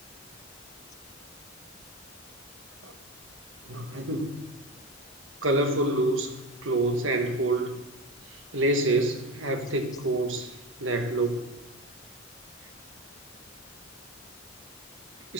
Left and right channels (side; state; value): both; normal; correlation 0.22